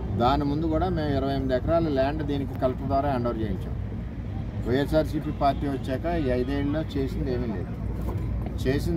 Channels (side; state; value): both; identical; correlation 1.00